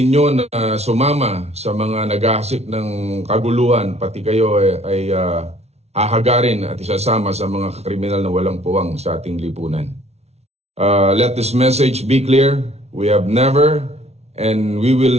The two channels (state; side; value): late; left; 0.31 ms